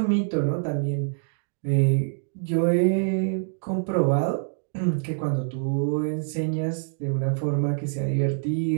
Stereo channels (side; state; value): left; silent; digital silence